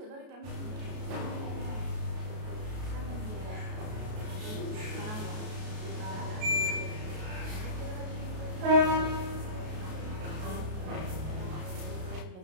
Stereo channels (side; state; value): left; late; 33 ms